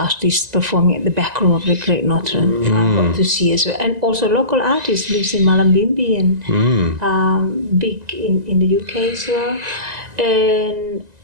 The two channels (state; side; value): late; left; 1.9 ms